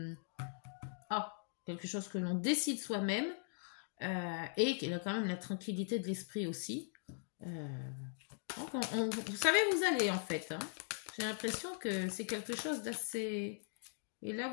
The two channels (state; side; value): silent; right; digital silence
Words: quelque chose que l'on décide soi-même et qu'il a quand même la tranquillité de l'esprit aussi. Donc vous savez où vous allez en fait. Hein. J'ai l'impression que c'est quelque chose d'assez... Et là,